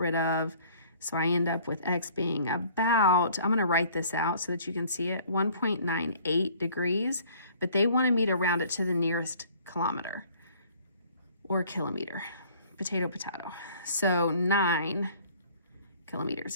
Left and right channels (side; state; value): both; inverted; correlation -0.54